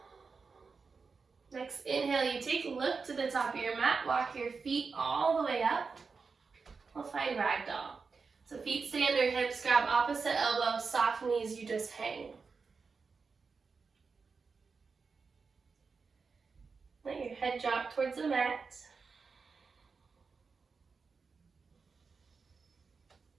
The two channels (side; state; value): left; quieter; 4.9 dB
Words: Next inhale, you take a look to the top of your mat, walk your feet all the way up. We'll find ragdoll. So feet stay under hips, grab opposite elbow, soft knees, you just hang. Let your head drop towards the mat.